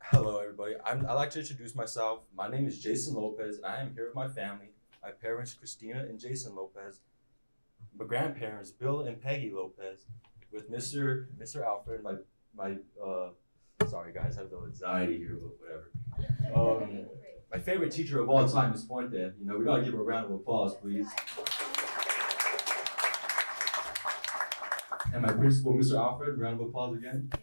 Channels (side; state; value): both; inverted; correlation -1.00